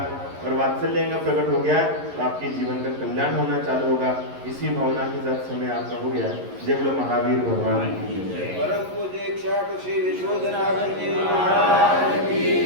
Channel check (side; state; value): left; late; 11 ms